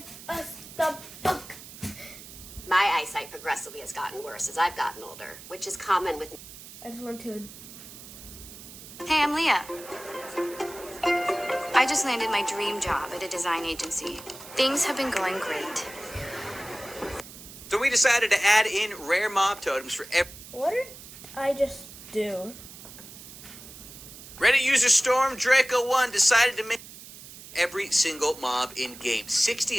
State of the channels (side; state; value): right; noise; hiss, 16 dB below the sound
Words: us the book. My eyesight progressively has gotten worse as I've gotten older, which is common with... I just want to... Hey, I'm Leah. I just landed my dream job at a design agency. Things have been going great. So we decided to add in rare mob totems for every... What did I just do? Reddit user Storm Draco1 decided to make every single mob in game,